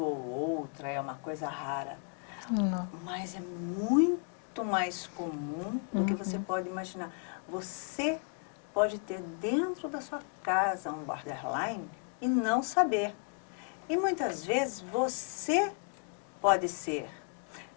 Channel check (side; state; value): right; quieter; 39.7 dB